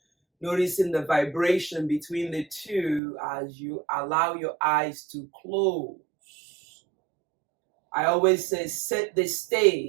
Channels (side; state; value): left; drops out; at 3.0 s